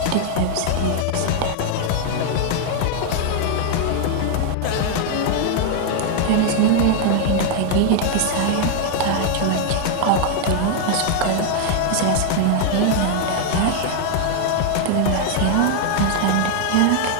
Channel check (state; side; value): different; both; correlation 0.00